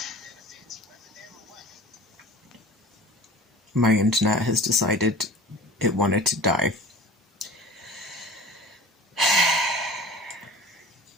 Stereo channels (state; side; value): normal; both; correlation 0.40